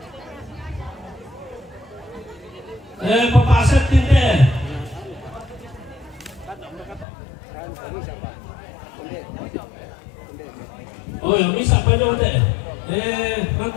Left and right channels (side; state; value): right; drops out; at 7.1 s